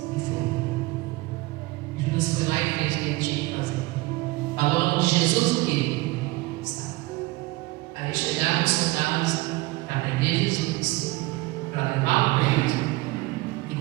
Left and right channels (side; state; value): left; quieter; 21.1 dB